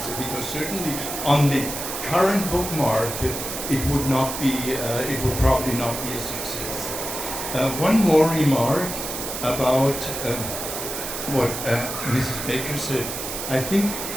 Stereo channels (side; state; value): right; noise; hiss, 6 dB below the sound